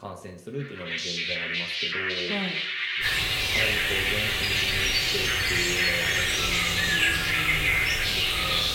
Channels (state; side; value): identical; both; correlation 1.00